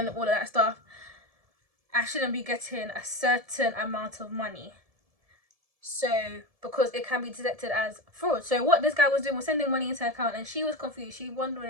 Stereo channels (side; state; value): left; late; 1.7 ms